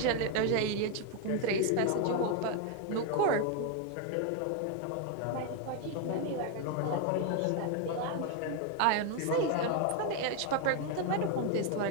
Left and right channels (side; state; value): both; different; correlation 0.01